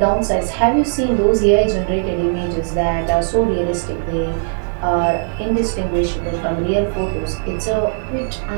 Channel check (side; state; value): left; silent; 67 dB below the other